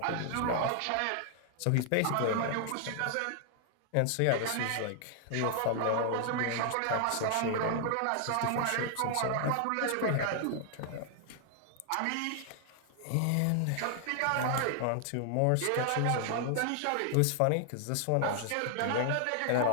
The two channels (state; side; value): different; both; correlation 0.00